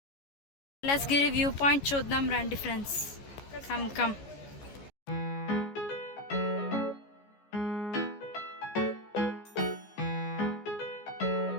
Kailasagiri view point చూద్దాం రండి ఫ్రెండ్స్. Come come.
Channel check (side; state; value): right; late; 14 ms